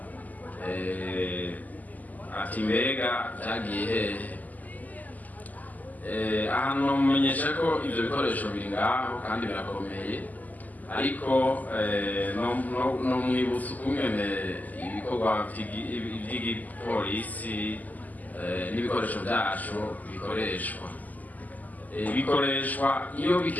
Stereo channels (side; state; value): right; late; 0.080 ms